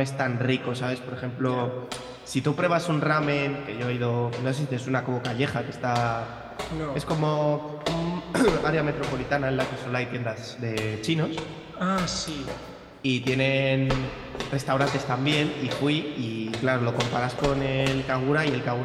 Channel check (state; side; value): identical; both; correlation 1.00